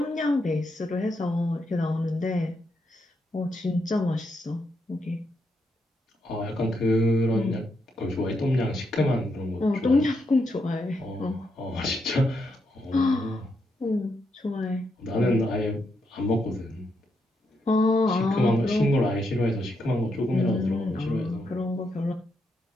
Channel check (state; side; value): normal; both; correlation 0.80